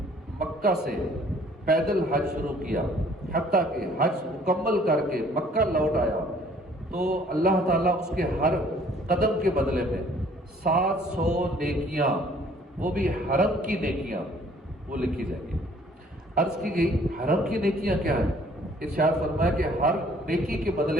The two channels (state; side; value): normal; both; correlation 0.57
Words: مکہ سے پیدل حج شروع کیا حتیٰ کہ حج مکمل کر کے مکہ لوٹ آیا تو اللہ تعالیٰ اس کے ہر قدم کے بدلے میں 700 نیکیاں، وہ بھی حرم کی نیکیاں، وہ لکھی جائیں گی۔ عرض کی گئی حرم کی نیکیاں کیا ہیں؟ ارشاد فرمایا کہ ہر نیکی کے